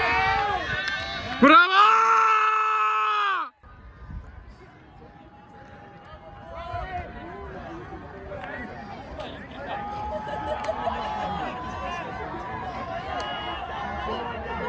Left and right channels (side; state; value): both; identical; correlation 1.00